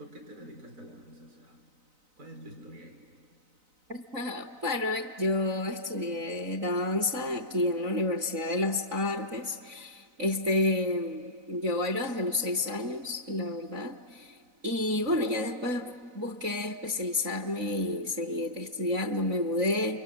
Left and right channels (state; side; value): late; left; 4.0 ms